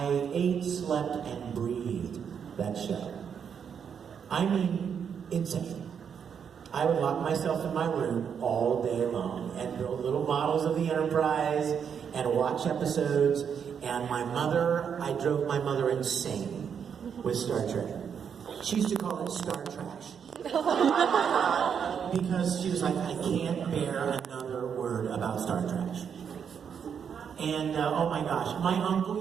ate, slept, and breathed that show. I mean, insane. I would lock myself in my room all day long and build little models of the Enterprise and watch episodes. And I drove my mother insane with Star Trek. She used to call it Star Trash. Because she was like, I can't bear another word about Star Trash. And oh my gosh, my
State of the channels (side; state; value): left; quieter; 7.4 dB